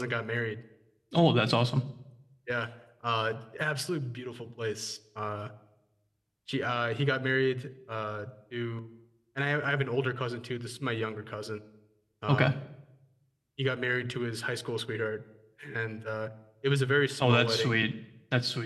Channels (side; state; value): both; identical; correlation 1.00